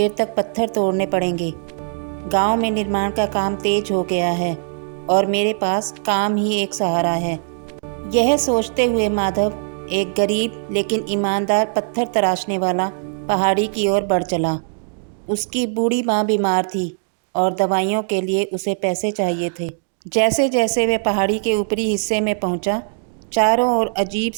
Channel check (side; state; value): left; silent; digital silence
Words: तक पत्थर तोड़ने पड़ेंगे। गांव में निर्माण का काम तेज हो गया है और मेरे पास काम ही एक सहारा है। यह सोचते हुए माधव एक गरीब लेकिन ईमानदार पत्थर तराशने वाला पहाड़ी की ओर बढ़ चला। उसकी बूढ़ी माँ बीमार थी और दवाइयों के लिए उसे पैसे चाहिए थे। जैसे जैसे वह पहाड़ी के ऊपरी हिस्से में पहुंचा, चारों ओर अजीब